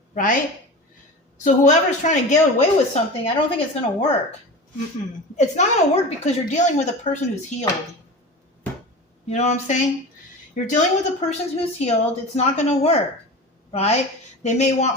right? So whoever's trying to get away with something, I don't think it's going to work. It's not going to work because you're dealing with a person who's healed. You know what I'm saying? You're dealing with a person who's healed. It's not going to work, right? They may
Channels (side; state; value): both; normal; correlation 0.31